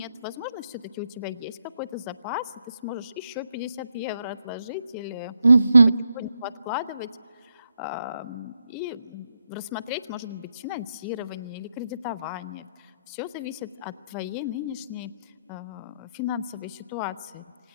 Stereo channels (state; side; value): inverted; both; correlation -0.80